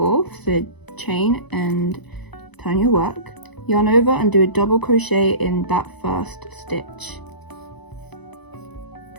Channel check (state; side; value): late; right; 0.99 ms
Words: so chain and turn your work. yarn over and do a double crochet in that first stitch.